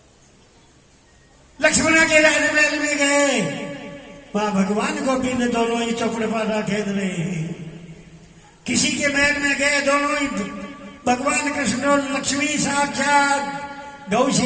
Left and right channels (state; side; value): identical; both; correlation 1.00